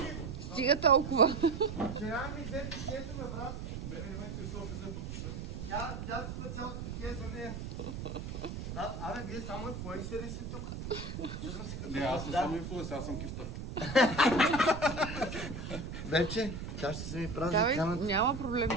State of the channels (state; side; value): noise; right; rumble, 7 dB below the sound